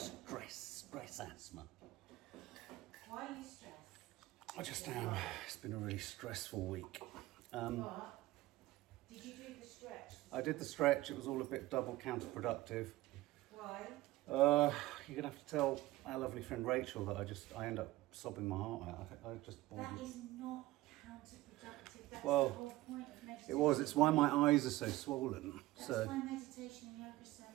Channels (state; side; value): quieter; left; 17.8 dB